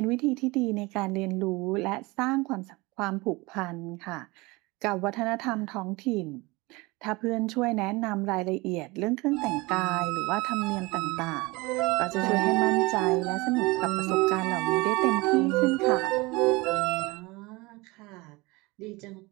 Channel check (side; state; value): left; quieter; 23.7 dB